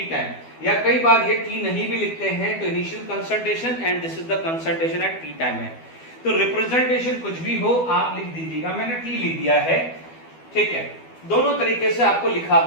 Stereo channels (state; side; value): late; right; 12 ms